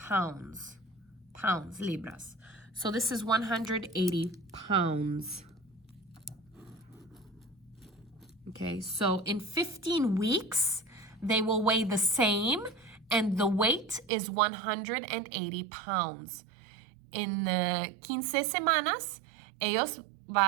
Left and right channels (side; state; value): left; drops out; at 14.1 s